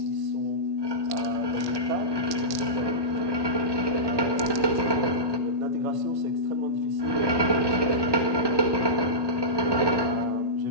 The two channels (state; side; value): late; left; 1.1 ms